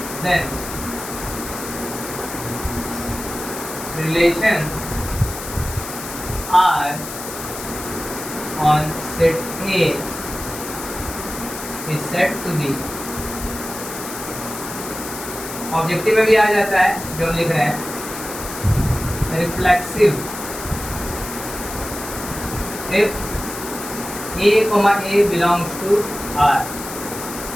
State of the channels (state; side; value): noise; left; hiss, 9 dB below the sound